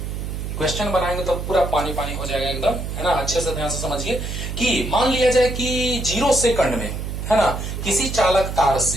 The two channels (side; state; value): right; noise; hum, 5 dB below the sound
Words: क्वेश्चन बनाएंगे तो पूरा पानी पानी हो जाएगा एकदम, है ना। अच्छे से ध्यान से समझिए कि मान लिया जाए कि 0 सेकंड में, है ना, किसी चालक तार